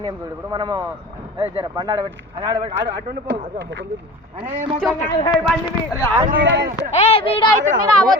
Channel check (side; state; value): both; normal; correlation 0.36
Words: చూడు. ఇప్పుడు మనము జర బండి ఆడబెట్టి అటు